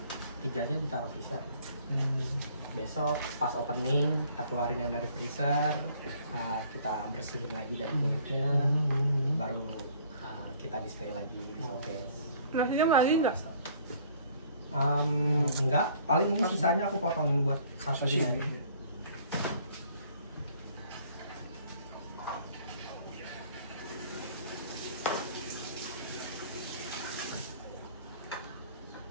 3-nya ditaruh freezer. Besok pas opening kita keluarin yang dari freezer, kita bersihin lagi dari kulitnya, baru kita display lagi di showcase. Nasinya lagi nggak? Enggak, paling ini sisanya aku potongin buat sashimi aja.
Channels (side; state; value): both; inverted; correlation -0.57